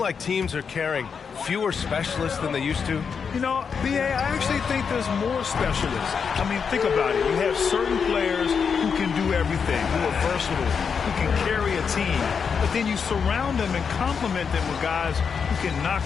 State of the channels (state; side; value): quieter; right; 6.2 dB